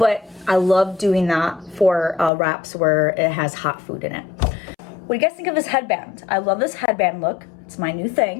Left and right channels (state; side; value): drops out; right; at 2.3 s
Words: I love doing that for wraps where it has hot food in it. What do you guys think of this headband? I love this headband look. It's my new